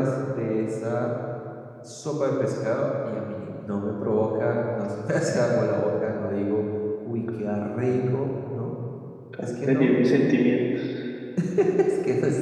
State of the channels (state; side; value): identical; both; correlation 1.00